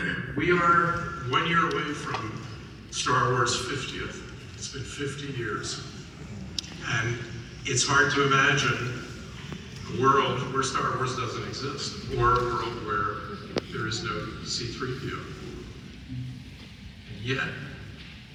we are 1 year away from Star Wars 50th. It's been 50 years. And it's hard to imagine a world where Star Wars doesn't exist, or a world where there is no C-3PO. And yet,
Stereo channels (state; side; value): identical; both; correlation 1.00